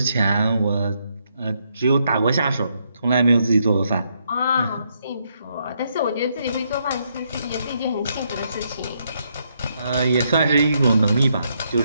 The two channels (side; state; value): both; inverted; correlation -0.76